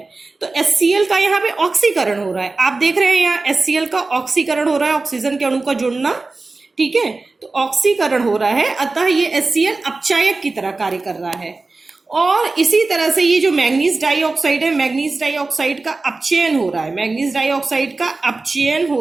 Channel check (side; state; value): left; quieter; 3.6 dB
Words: तो HCl का यहाँ पे ऑक्सीकरण हो रहा है, आप देख रहे हैं यहाँ HCl का ऑक्सीकरण हो रहा है, ऑक्सीजन के अणु का जुड़ना। ठीक है, तो ऑक्सीकरण हो रहा है, अतः ये HCl अपचायक की तरह कार्य कर रहा है। और इसी तरह से ये जो मैग्नीज डाइऑक्साइड है, मैग्नीज डाइऑक्साइड का अपचयन हो रहा है, मैग्नीज डाइऑक्साइड का अपचयन